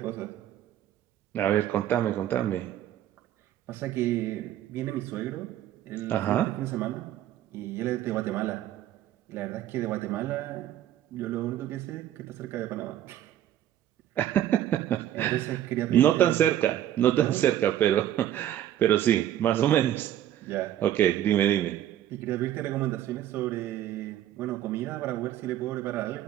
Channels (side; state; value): left; quieter; 12.0 dB